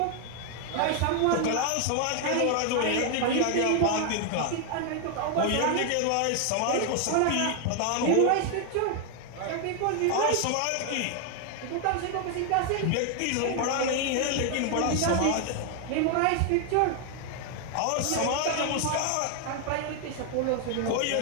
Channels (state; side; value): different; both; correlation 0.01